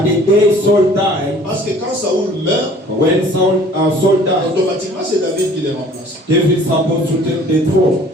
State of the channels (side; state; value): both; normal; correlation 0.51